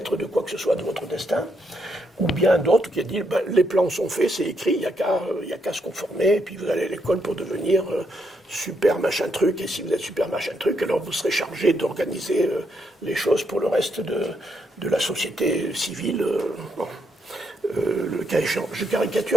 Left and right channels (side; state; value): both; normal; correlation 0.77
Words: de quoi que ce soit de votre destin. Ou bien d'autres qui a dit les plans sont faits, c'est écrit, il n'y a qu'à se conformer, et puis vous allez à l'école pour devenir super machin truc, et si vous êtes super machin truc, alors vous serez chargé d'organiser les choses pour le reste de la société civile. Bon. Le cas échéant, je